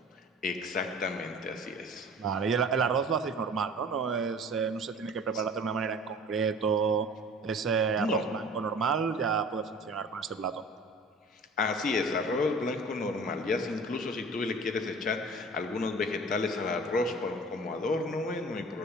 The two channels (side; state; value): both; normal; correlation 0.44